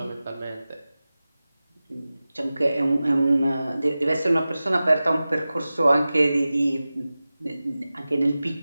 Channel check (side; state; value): both; inverted; correlation -0.96